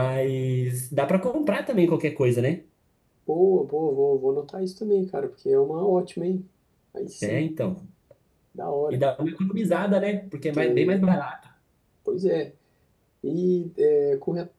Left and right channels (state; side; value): identical; both; correlation 1.00